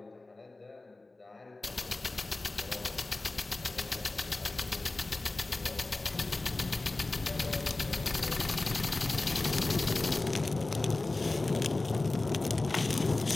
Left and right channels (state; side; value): quieter; right; 3.1 dB